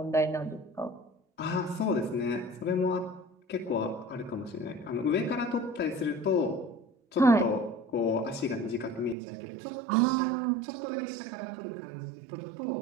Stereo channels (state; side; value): drops out; left; at 9.2 s